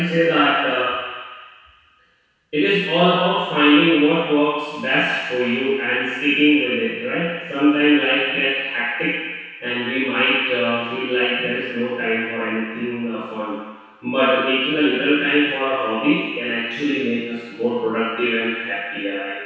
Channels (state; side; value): identical; both; correlation 1.00